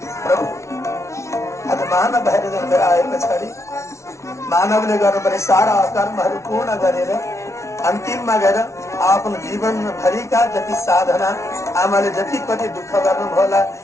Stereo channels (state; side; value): late; right; 0.14 ms